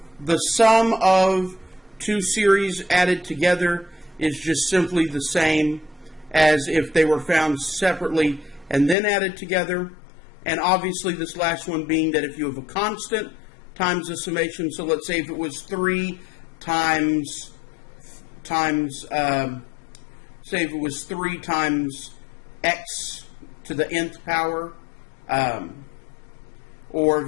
the sum of two series added together is just simply the same as if they were found separately and then added together. And obviously this last one being that if you have a constant times the summation, so let's say if it was 3 times say if it was 3 times x to the nth power, or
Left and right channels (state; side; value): drops out; right; at 9.0 s